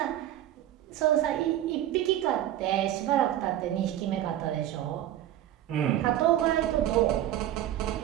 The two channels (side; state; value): left; quieter; 12.6 dB